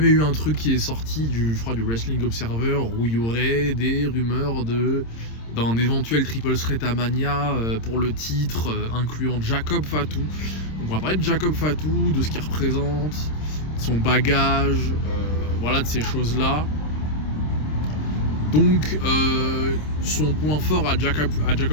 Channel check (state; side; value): late; right; 26 ms